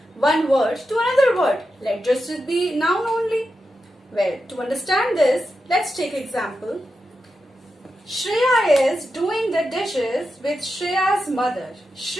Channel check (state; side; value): normal; both; correlation 0.89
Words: one word to another word? Let just be noun only. Well, to understand this, let's take example. Shreya is doing the dishes with Shreya's mother.